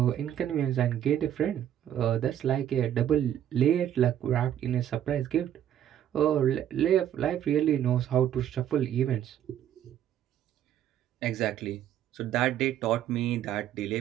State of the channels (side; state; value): left; quieter; 10.7 dB